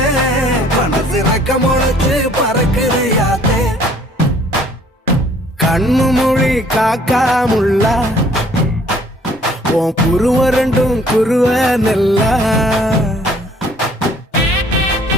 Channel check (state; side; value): normal; both; correlation 0.58